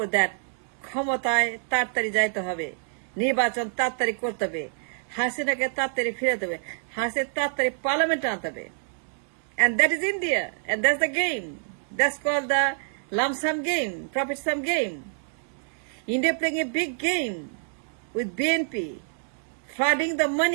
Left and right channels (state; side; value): silent; left; digital silence